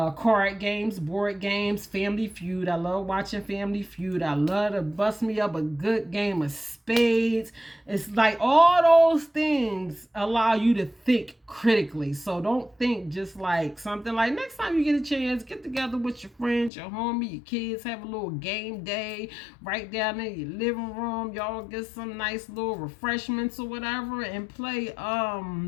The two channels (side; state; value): right; drops out; at 16.7 s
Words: games, board games, Family Feud. I love watching Family Feud. I love to bust me up a good game of spades. It's like all those things allow you to think critically. So don't think just like something like next time you get a chance, get together with your friends, your homie, your kids, have a little game day right down in your living room. Y'all get some nice little refreshments or whatever and play